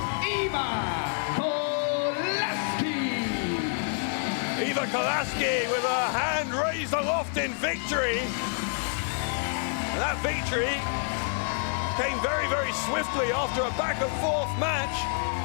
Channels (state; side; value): silent; right; 59 dB below the other